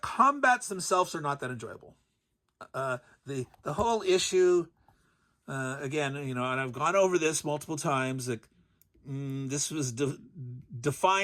themselves are not that enjoyable. The whole issue, again, and I've gone over this multiple times. Like, this was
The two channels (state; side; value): identical; both; correlation 1.00